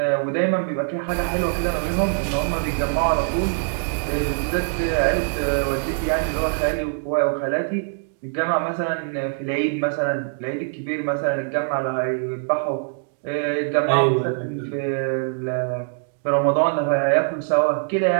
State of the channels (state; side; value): silent; left; digital silence